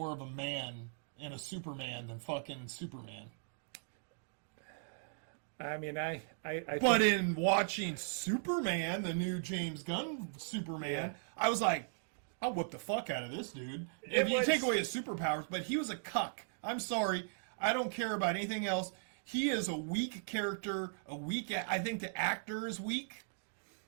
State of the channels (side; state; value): left; silent; digital silence